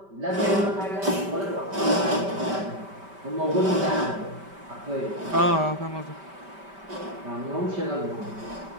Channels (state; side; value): late; left; 5.1 ms